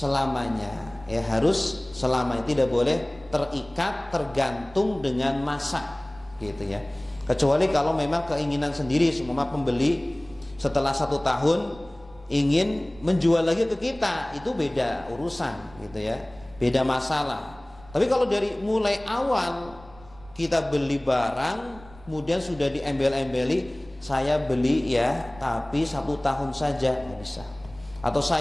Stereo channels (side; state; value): right; noise; rumble, 22 dB below the sound